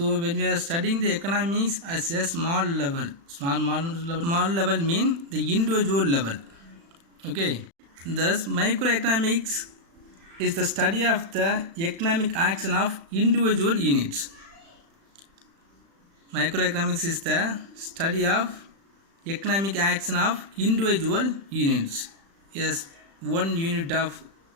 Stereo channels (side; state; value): left; late; 36 ms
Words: when we are studying the economics as a small level mean the individual level. Okay, thus microeconomics is the study of the economic action of individual units. Microeconomics is the study of economic action of individual units. Yes, one unit of